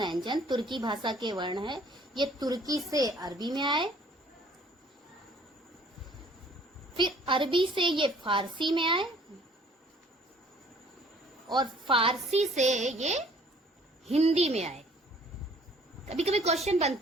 तुर्की भाषा के वर्ण है। ये तुर्की से अरबी में आए, फिर अरबी से ये फारसी में आए, और फारसी से ये हिंदी में आए। कभी कभी क्वेश्चन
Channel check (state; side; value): normal; both; correlation 0.56